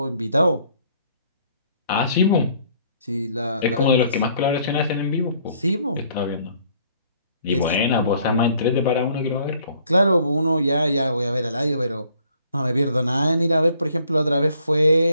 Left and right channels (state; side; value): inverted; both; correlation -0.63